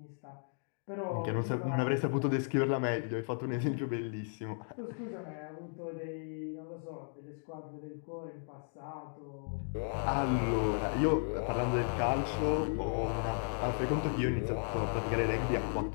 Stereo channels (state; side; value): silent; right; digital silence